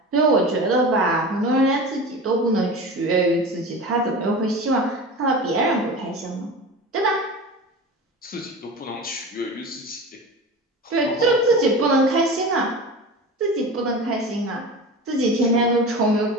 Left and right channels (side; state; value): both; normal; correlation 0.32